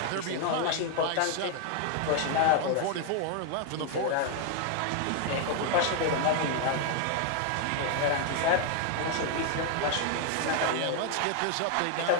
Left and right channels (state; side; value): different; both; correlation 0.00